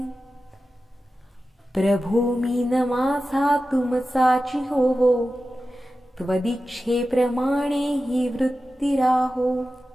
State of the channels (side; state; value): both; normal; correlation 0.93